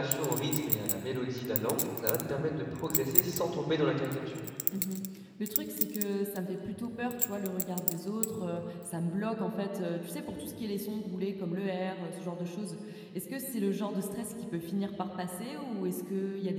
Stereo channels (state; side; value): identical; both; correlation 1.00